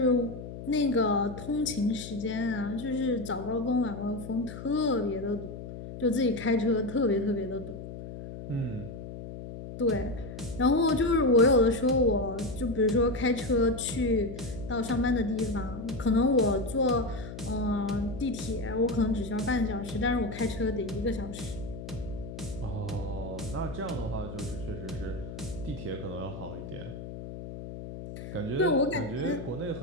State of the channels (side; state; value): left; noise; hum, 10 dB below the sound